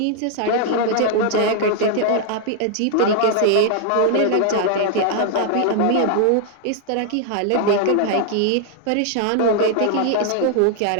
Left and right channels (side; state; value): both; different; correlation -0.01